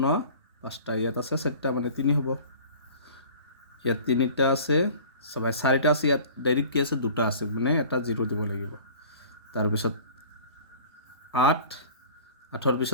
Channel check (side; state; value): both; inverted; correlation -0.44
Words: 5টা ইয়াত আছে 4টা মানে 3 হ'ব ইয়াত 3টা আছে চাবা 4টা আছে ইয়াত ডাইৰেক্ট কি আছে 2টা আছে মানে এটা 0 দিব লাগিব তাৰপিছত 8ৰ